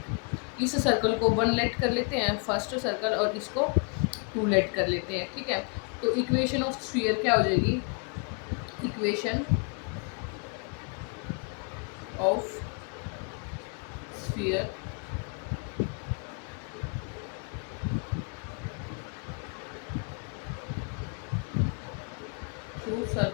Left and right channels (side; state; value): right; quieter; 37.8 dB